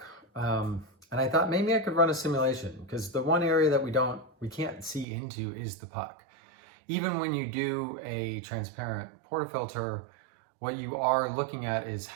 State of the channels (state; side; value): drops out; left; at 5.1 s